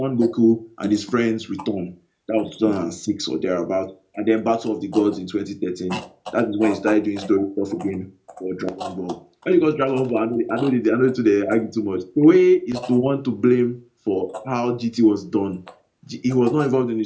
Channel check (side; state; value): both; identical; correlation 1.00